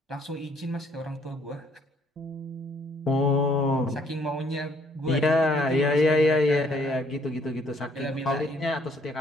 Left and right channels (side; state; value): both; normal; correlation 0.65